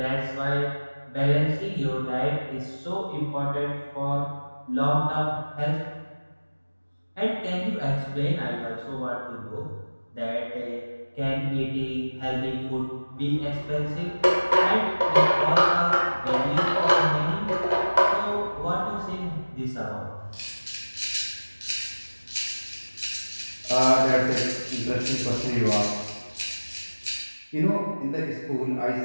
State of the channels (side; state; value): both; inverted; correlation -1.00